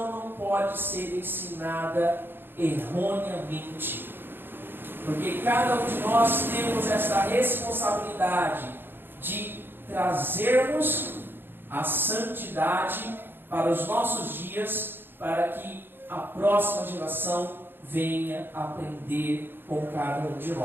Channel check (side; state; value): left; late; 0.10 ms